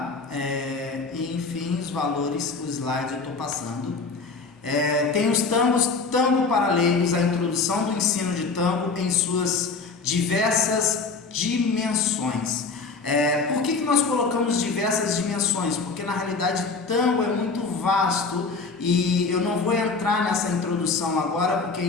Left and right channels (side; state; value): right; quieter; 4.3 dB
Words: E enfim, os valores, o slide eu estou passando. Tem os tangos, tango para leigos, a introdução do ensino de tango em suas diversas dimensões. Por que nós colocamos diversas dimensões? Porque na realidade tango é muito vasto e eu não vou entrar nessa introdução agora, porque a